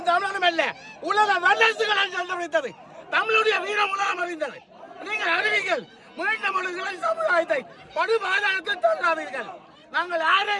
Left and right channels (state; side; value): identical; both; correlation 1.00